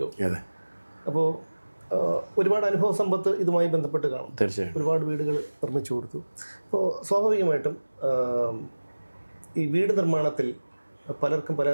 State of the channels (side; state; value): both; inverted; correlation -1.00